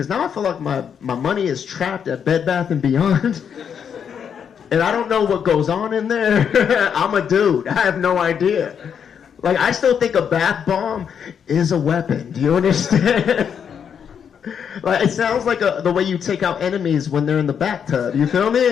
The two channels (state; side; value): quieter; right; 7.7 dB